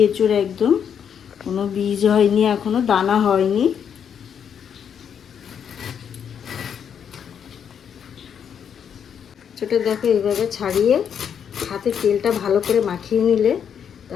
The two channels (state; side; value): quieter; right; 8.0 dB